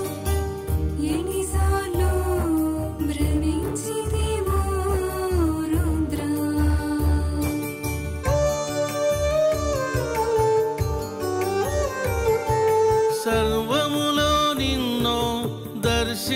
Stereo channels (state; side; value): identical; both; correlation 1.00